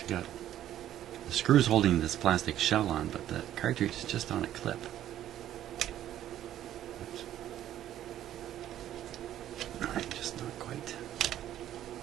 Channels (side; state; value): left; quieter; 12.0 dB